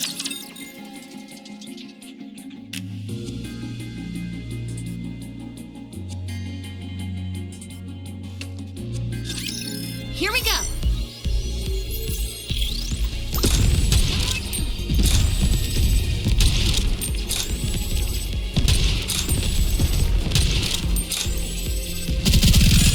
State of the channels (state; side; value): identical; both; correlation 1.00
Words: Here we go!